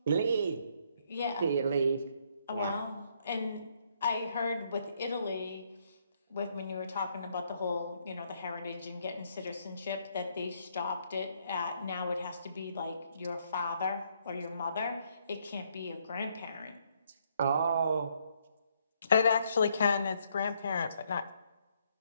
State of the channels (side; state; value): both; inverted; correlation -0.71